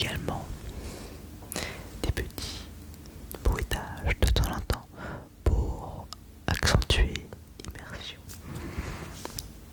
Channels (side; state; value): both; identical; correlation 1.00